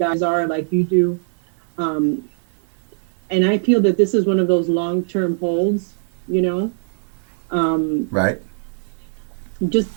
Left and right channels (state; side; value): silent; left; digital silence